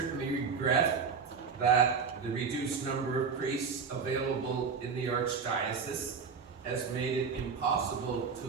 regret that the reduced number of priests available in the Archdiocese has made it impossible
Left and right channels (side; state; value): left; quieter; 5.6 dB